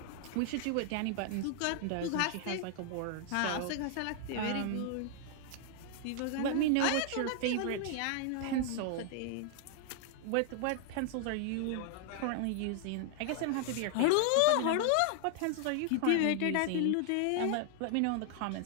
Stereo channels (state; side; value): different; both; correlation 0.00